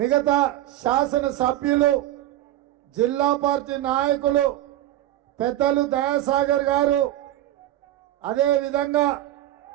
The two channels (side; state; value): left; quieter; 14.0 dB